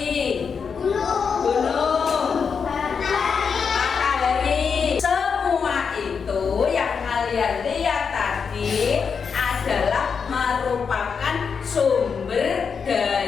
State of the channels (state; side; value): quieter; right; 6.1 dB